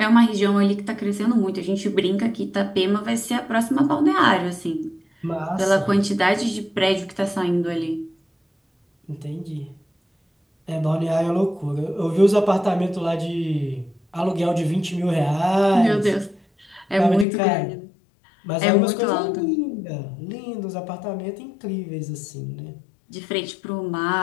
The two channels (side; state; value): right; drops out; at 17.2 s